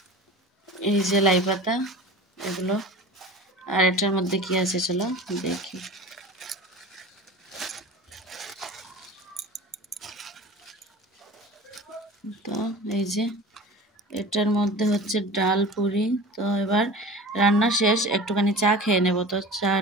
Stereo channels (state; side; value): normal; both; correlation 0.37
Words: এই যে লাই পাতা এগুলো, আর এটার মধ্যে কি আছে চলো দেখি। তো এই যে এটার মধ্যে হচ্ছে ডাল পুরি। তো এবার রান্না শেষ, একটুখানি চা খেয়ে নেব, তো